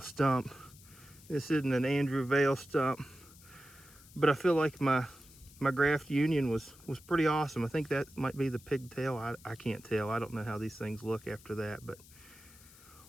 This isn't an Andrew Vale stump, but I feel like my my graft union was pretty awesome. I think that might be the pigtail. I can't tell. I don't know how these things look after that, but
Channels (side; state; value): left; noise; hiss, 22 dB below the sound